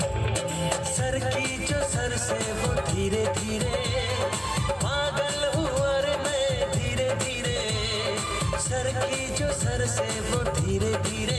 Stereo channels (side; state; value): both; identical; correlation 1.00